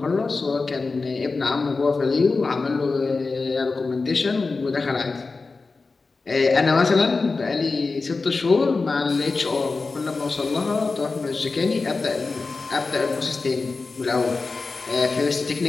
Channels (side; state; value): right; quieter; 4.0 dB